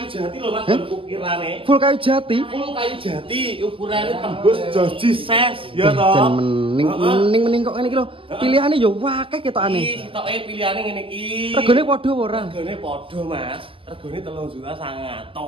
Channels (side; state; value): left; late; 0.25 ms